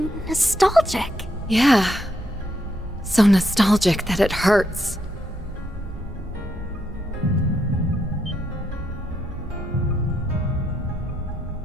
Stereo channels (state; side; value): normal; both; correlation 0.78